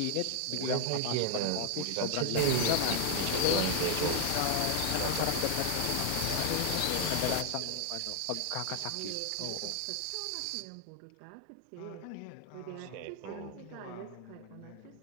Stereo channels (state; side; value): different; both; correlation 0.00